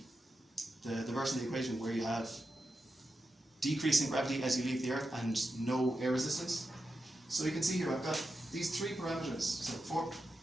version of the equation where you have decreasing gravity as you leave the Earth and no air resistance. So you can see here I've got these three parameters. So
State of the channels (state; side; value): normal; both; correlation 0.89